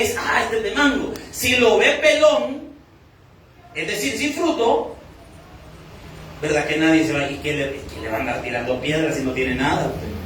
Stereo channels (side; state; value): both; identical; correlation 1.00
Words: es. Este es de mango. Si lo ve pelón, es decir, sin fruto, ¿verdad? Que nadie se va, ¿y que le va a andar tirando piedras si no tiene nada usted?